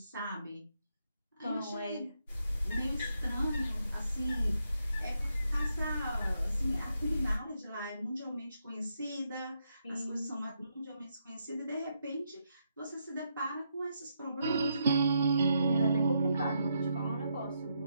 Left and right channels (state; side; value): inverted; both; correlation -0.80